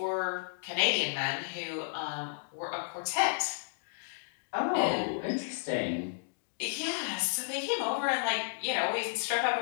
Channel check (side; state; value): right; silent; digital silence